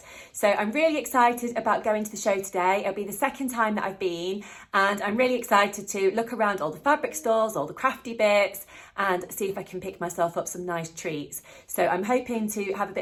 So I'm really excited about going to the show today. It'll be the second time that I've been, and I'm really excited to look around all the fabric stores, all the crafty bits, and see if I can pick myself up some nice treats. So I'm hoping to have a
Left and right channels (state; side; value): identical; both; correlation 1.00